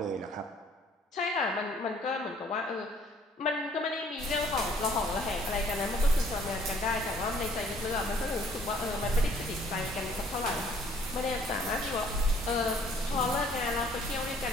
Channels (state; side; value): normal; both; correlation 0.59